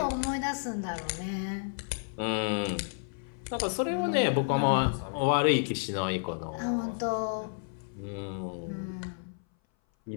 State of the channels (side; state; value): right; silent; 57 dB below the other